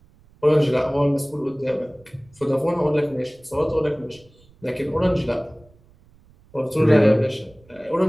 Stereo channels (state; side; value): noise; right; rumble, 29 dB below the sound